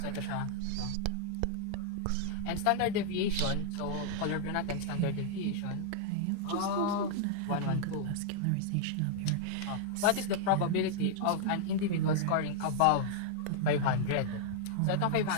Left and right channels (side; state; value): both; different; correlation -0.01